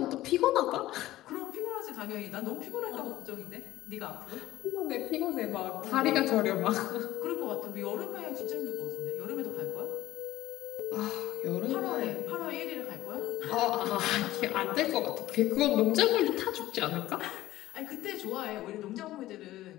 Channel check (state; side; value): quieter; right; 15.7 dB